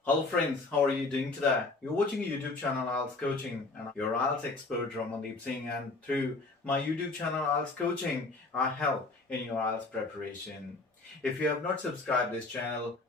Hello friends, how are you doing today? You're watching a YouTube channel IELTS Coaching and I'm your IELTS expert Ramandeep Singh, and through my YouTube channel IELTS Coaching, I help in your IELTS preparation. If you have not subscribed this channel,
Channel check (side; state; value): right; quieter; 3.4 dB